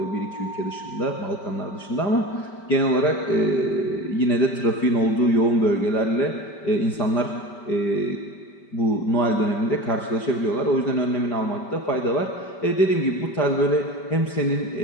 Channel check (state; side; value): late; right; 5.1 ms